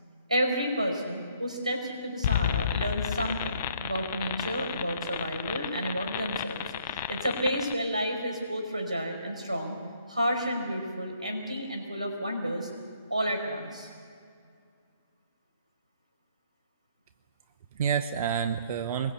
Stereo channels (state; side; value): inverted; both; correlation -0.65